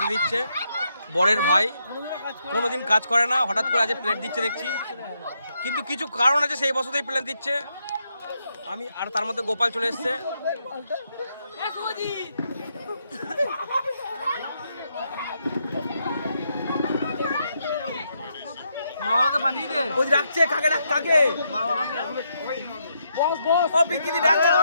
দিচ্ছে। বরের ভাই কোনোদিন কাজ করে না, হঠাৎ করে আজ প্লেট দিচ্ছে দেখছি, কিন্তু কিছু কারণ আছে, সেই বছরতেই প্লেট দিচ্ছে। আমি আর তার মধ্যে গোপাল চলে এসছে। মা বাবাকে পাঠিয়ে দে। ওই ডাকছে কাকে কাকে? মা বাবাকে। বস বস। ও পিঙ্কিদি ডাকছে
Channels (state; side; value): inverted; both; correlation -0.79